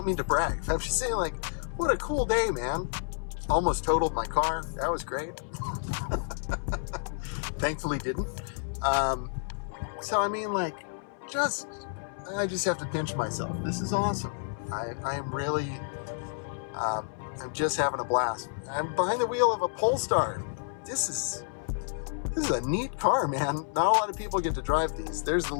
mean to brag. I'm just saying, like, what a cool day, man. Almost totaled my car. That was great. Thankfully didn't. So, I mean, like, I just have to pinch myself. This is awesome. I am really, I'm just having a blast. I'm behind the wheel of a Polestar. This is a neat car, man. Not a lot of people get to drive these. There's the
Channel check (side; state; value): right; silent; 58 dB below the other